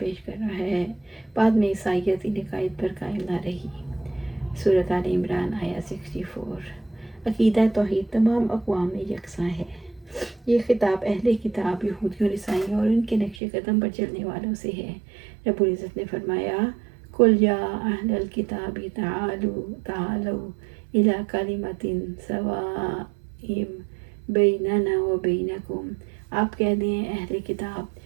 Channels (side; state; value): left; drops out; at 13.4 s